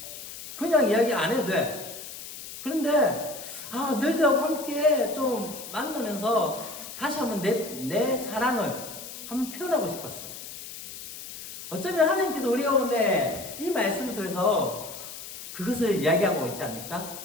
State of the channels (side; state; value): left; noise; hiss, 12 dB below the sound